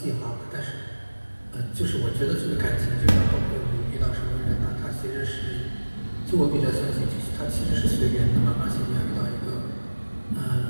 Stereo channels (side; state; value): both; inverted; correlation -1.00